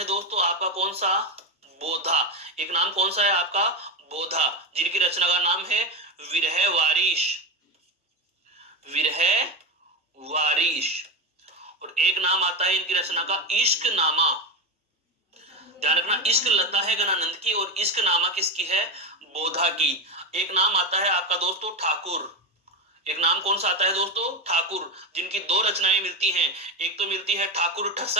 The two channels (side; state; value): both; normal; correlation 0.15